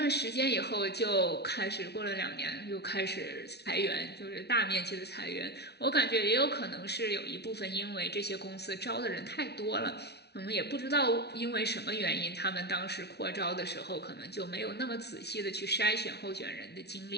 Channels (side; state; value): right; late; 0.49 ms